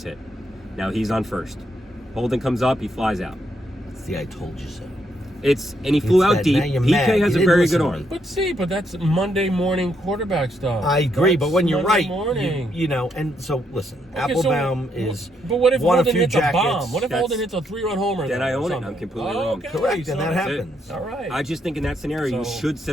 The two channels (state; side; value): normal; both; correlation 0.76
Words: hit. Now he's on first. Holden comes up. He flies out. See, I told you so. And he flew out deep. Now you're PK mad. has You a didn't very listen good to arm. me. But that's Monday morning quarterback stuff. I agree, but when you're Monday right, morning. you know, and so listen, Okay, Applebaum so, is But what if won a Holden few hits jackets. a bomb? What if That's- Holden hits a 3-run homer? Then though, I or own it. something? I'm completely wrong. Okay, Correct, so and that that's it. happens. All right. I just think in that scenario, you So- should set